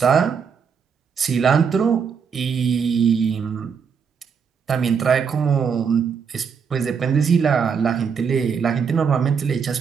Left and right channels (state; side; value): quieter; left; 6.5 dB